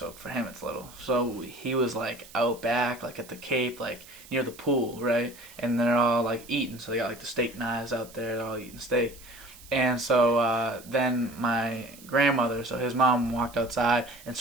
for him it's little. So he was, like, out back, like, at the Cape, like, near the pool, right? And they're all, like, eating. So they got, like, the steak knives out there. They're all eating steak. And so then my grandmother, so his mom walked outside and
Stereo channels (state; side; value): noise; right; hiss, 20 dB below the sound